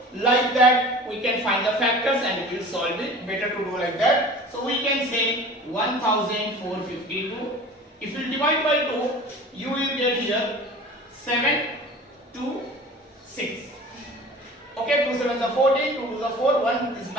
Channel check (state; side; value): normal; both; correlation 0.41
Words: like that we can find the factors and we will solve it. Better to do like that. So we can say 1452. If you divide by 2, you will get here 7 2 6. Okay, 2 7s are 14, 2 2s are 4, 1 is